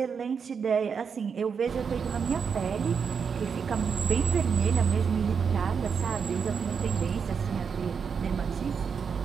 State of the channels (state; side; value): quieter; left; 6.2 dB